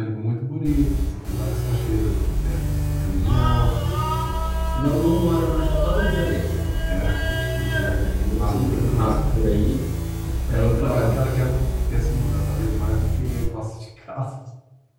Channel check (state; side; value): identical; both; correlation 1.00